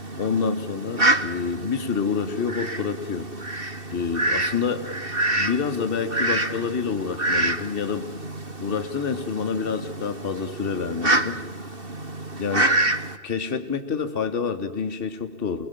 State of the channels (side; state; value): left; late; 2.7 ms